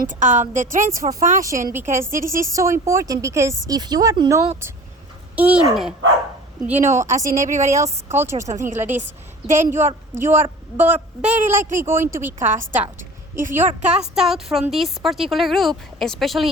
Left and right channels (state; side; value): normal; both; correlation 0.41